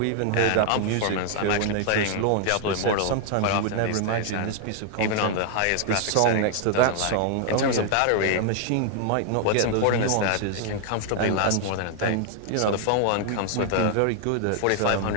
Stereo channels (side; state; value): both; different; correlation 0.00